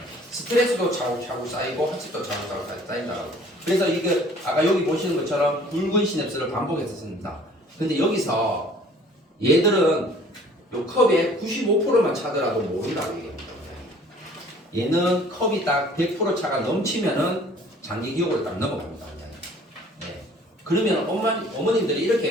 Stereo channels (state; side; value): normal; both; correlation 0.53